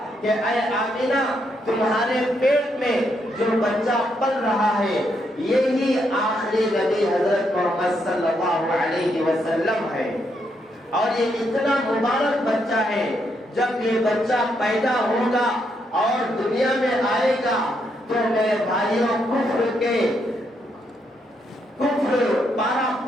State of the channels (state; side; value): normal; both; correlation 0.77